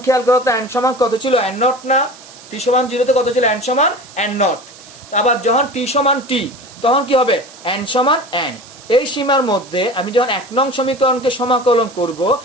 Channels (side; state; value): right; noise; hiss, 20 dB below the sound